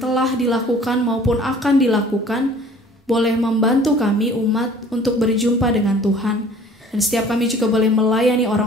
dilakukan maupun akan dilakukan boleh membantu kami umat untuk berjumpa dengan Tuhan. Dan setiap kami juga boleh melayani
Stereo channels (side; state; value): both; normal; correlation 0.51